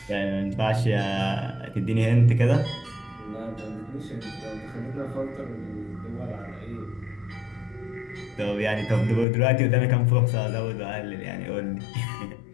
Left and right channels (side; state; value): right; drops out; at 9.2 s